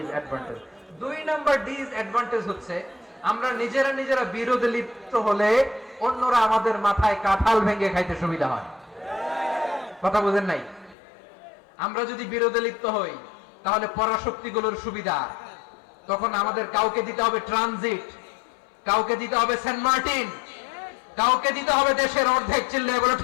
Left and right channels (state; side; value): drops out; right; at 11.0 s